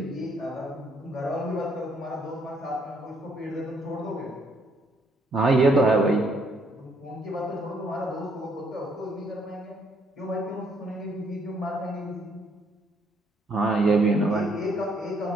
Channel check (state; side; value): normal; both; correlation 0.69